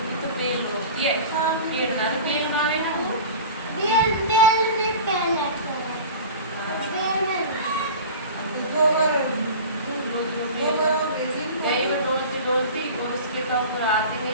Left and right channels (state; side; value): inverted; both; correlation -0.36